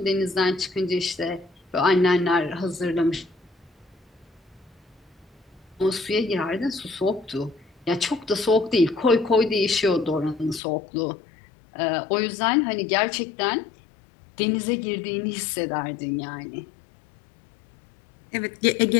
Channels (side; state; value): right; drops out; at 10.6 s